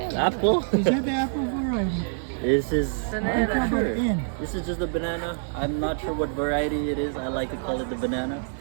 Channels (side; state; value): left; silent; 58 dB below the other